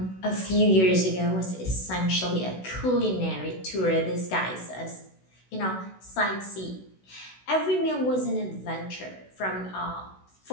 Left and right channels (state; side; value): late; right; 16 ms